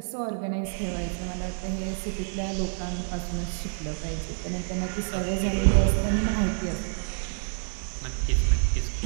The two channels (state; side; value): silent; left; 60 dB below the other